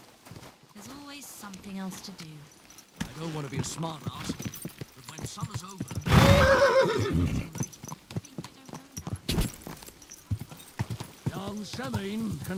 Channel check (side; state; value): both; identical; correlation 1.00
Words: There's always something else to do. I don't want to be a smart ass, but when summer's over... Young Semin